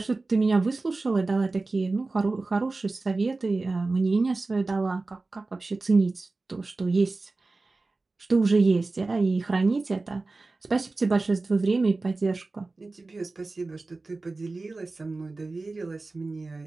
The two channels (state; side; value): quieter; left; 3.5 dB